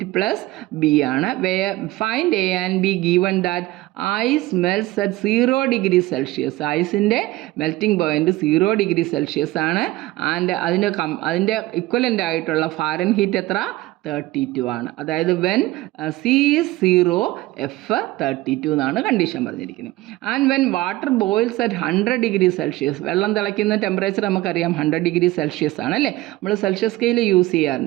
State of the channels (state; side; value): quieter; left; 18.2 dB